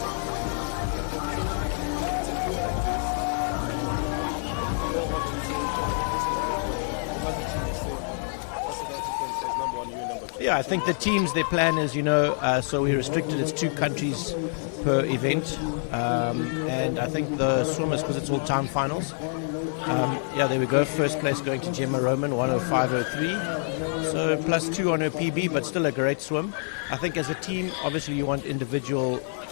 So when it's a duel like this, go home and say, personal record, or as a team you say, as South Africans, as number 1, you're number 2. Yeah, I think the teams, their plan is, so we restricted, it's 2 countries per event, and I think the swimmers, because it's all time finals, there we go. First place going to Gemma Roman, 105.03. So +2 on her PB, but still a great swim. I think as a team, obviously you want individual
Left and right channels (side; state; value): right; silent; 60 dB below the other